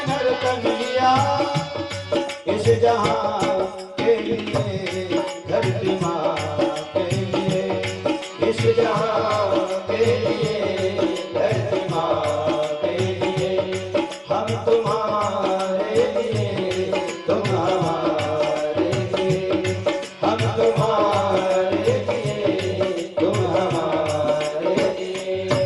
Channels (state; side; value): identical; both; correlation 1.00